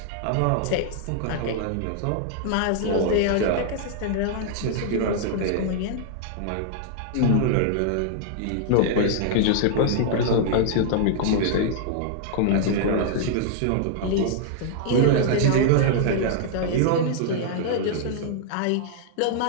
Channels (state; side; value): different; both; correlation -0.01